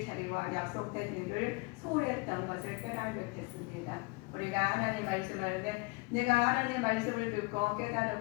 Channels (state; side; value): quieter; right; 27.3 dB